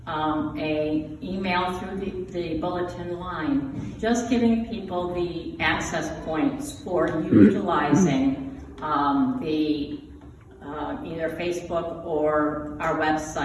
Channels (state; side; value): identical; both; correlation 1.00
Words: a email through the bulletin line, just giving people the access points for utilizing either Facebook or our